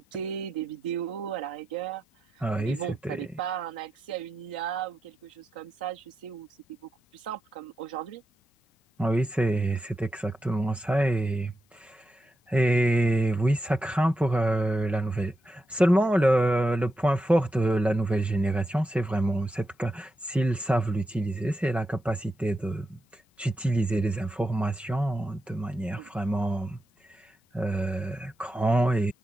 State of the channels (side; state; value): both; normal; correlation 0.87